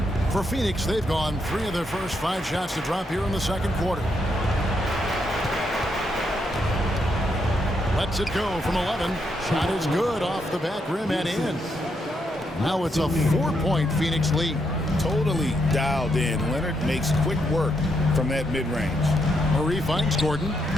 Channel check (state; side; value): normal; both; correlation 0.79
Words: For Phoenix, they've gone 3 of their first 5 shots to drop here in the second quarter. Lets it go from 11. Shot is good off the back rim and in. Now it's a 4-point Phoenix lead. Totally dialed in. Leonard makes quick work from that mid-range. Murray finds Gordon.